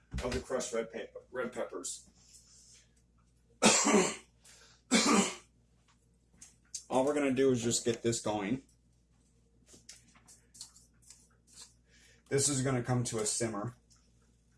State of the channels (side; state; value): both; identical; correlation 1.00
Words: of the crushed red peppers. All we're going to do is just get this going. This is going to come to a simmer.